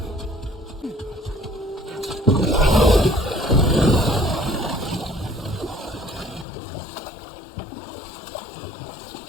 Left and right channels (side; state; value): right; drops out; at 6.5 s